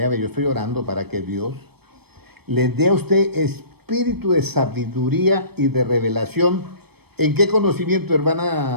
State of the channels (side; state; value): left; late; 0.97 ms